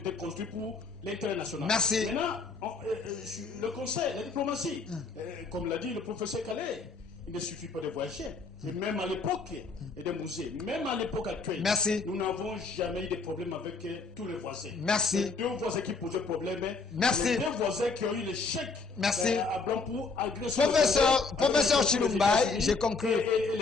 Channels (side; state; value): right; quieter; 4.2 dB